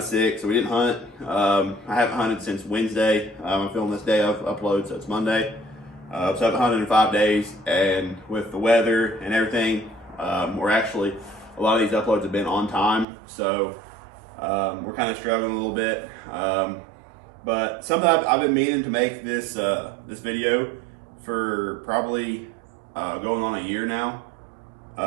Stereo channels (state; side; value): drops out; left; at 13.1 s